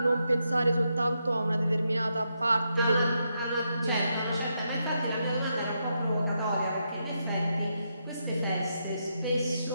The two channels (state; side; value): inverted; both; correlation -0.82